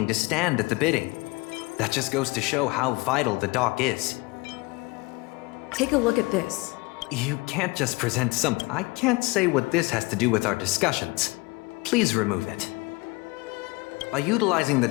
to stand at the bidding. That just goes to show how vital the dock is. Take a look at this. You can't just present something. I can't say what this has to do with our discussions. Please remove it. By utilizing the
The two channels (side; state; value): right; quieter; 24.6 dB